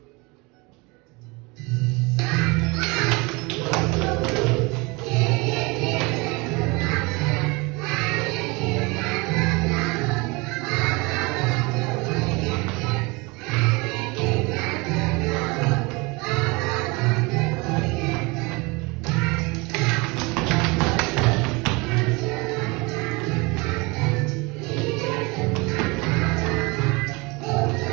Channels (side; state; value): left; quieter; 26.2 dB